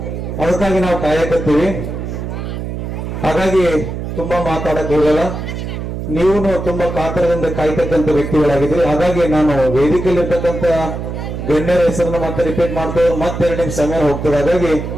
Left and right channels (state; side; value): noise; right; hum, 6 dB below the sound